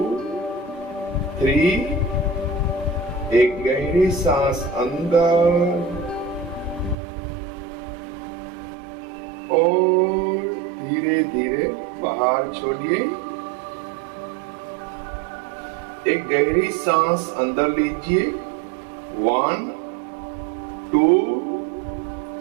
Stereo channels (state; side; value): drops out; left; at 7.0 s